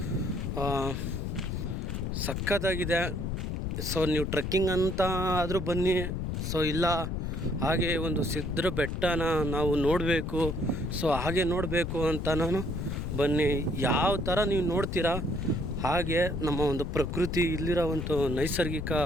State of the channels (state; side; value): noise; left; rumble, 2 dB below the sound